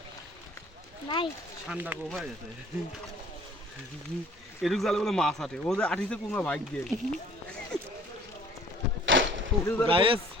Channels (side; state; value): both; normal; correlation 0.54